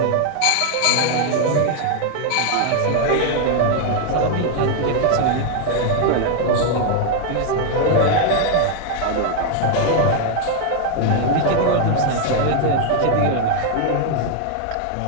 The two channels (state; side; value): different; both; correlation 0.00